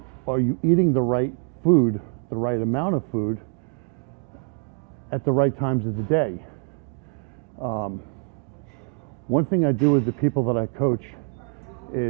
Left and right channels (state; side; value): quieter; left; 37.4 dB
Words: are you eating the right food, the right amount of food, at the right times of the day? One thing I do with the people that I coach